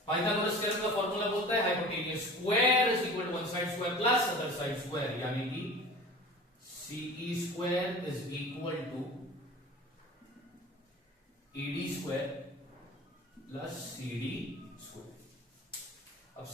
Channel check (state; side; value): normal; both; correlation 0.39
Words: Pythagoras theorem का फॉर्मूला बोलता है hypotenuse square is equal to one side square plus other side square, यानी कि CE square is equal to ED square plus CD square. अब